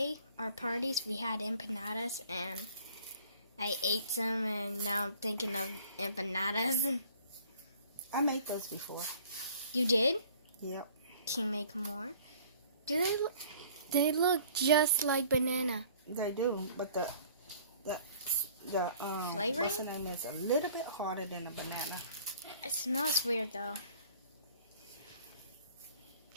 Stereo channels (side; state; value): both; inverted; correlation -0.52